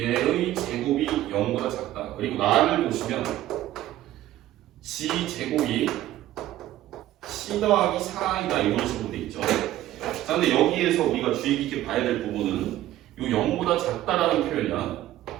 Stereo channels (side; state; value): left; quieter; 14.1 dB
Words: 제곱이 0보다 작다. 그리고 나를 보시면 G 제곱이 C 더하기 4i다 이런 식으로 돼 있죠. 자, 근데 여기에서 우리가 주의 깊게 봐야 될 부분은 이 0보다 작다라는 표현이야.